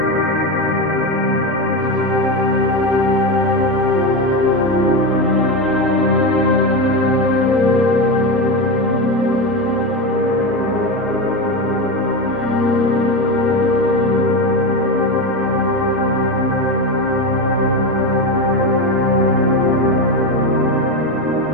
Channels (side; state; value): both; normal; correlation 0.16